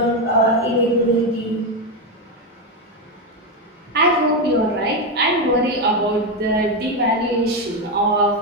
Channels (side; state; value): both; normal; correlation 0.09